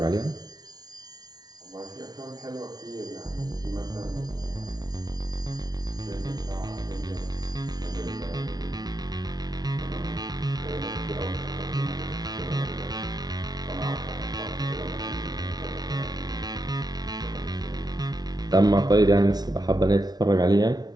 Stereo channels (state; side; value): late; left; 0.19 ms